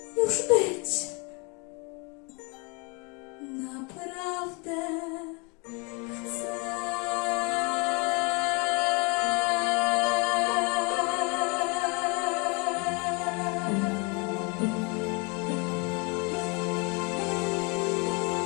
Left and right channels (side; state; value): right; quieter; 31.3 dB